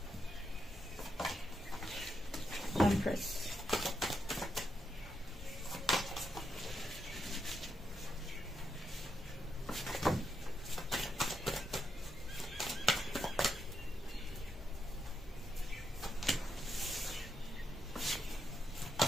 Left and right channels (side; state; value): both; normal; correlation 0.81